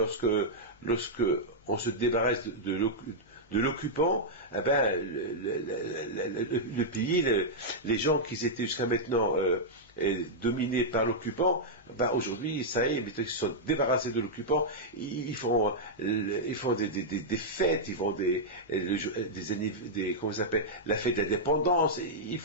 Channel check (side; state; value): both; normal; correlation -0.07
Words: on se débarrasse de l'occupant, eh ben, le pays, les gens qui étaient jusqu'à maintenant dominés par l'occupant, ben aujourd'hui, ça y est, ils se sont débarrassés de l'occupant, ils font des fêtes, ils font comment ça s'appelle, la fête de l'indépendance,